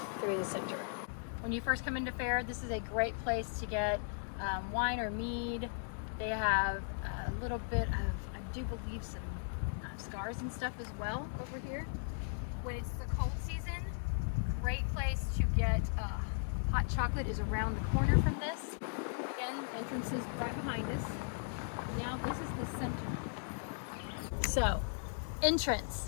through the center. When you first come into Fair, this is a great place to get wine or mead, They have a little bit of, I do believe, some scars and stuff as well over here. When it's the cold season, great place to get hot chocolate is around the corner from this. Again, entrance is right behind us. Now this is the center. So,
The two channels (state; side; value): silent; right; digital silence